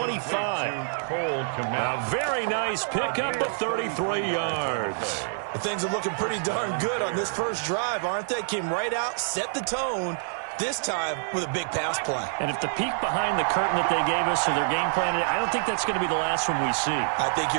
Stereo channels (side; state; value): left; silent; 60 dB below the other